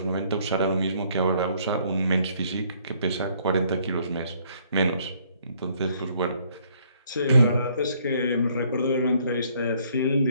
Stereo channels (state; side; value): inverted; both; correlation -0.64